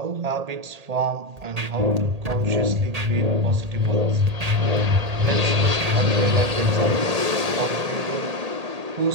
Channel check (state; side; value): late; left; 1.8 ms